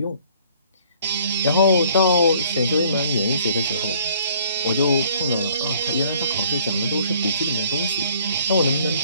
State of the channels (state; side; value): inverted; both; correlation -0.59